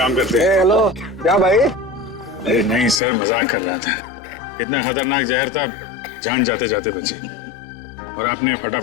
करते हैं। हेलो, क्या भाई? अरे नहीं सर, मजाक कर रहा था। इतना खतरनाक जहर था, जान जाते जाते बची। और आपने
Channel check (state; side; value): drops out; right; at 3.0 s